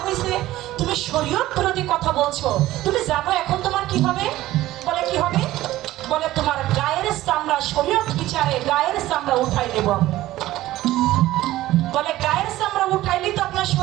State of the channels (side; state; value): left; quieter; 15.7 dB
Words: হয়েছে, তুমি শরীয়ত বিরোধী কথা বলছো। তুমি জানো এখন তোমার কি হবে? বলে কি হবে? বলে তোমার গায়ের চামড়া শরীয়ত বিচারে গায়ের চামড়া উঠাই দেব। বলে গায়ের চামড়া উঠাইলে তো আপনার